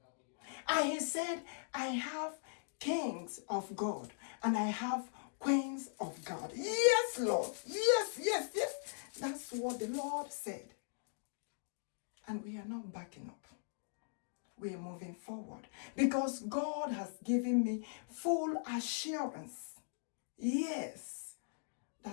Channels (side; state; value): right; silent; digital silence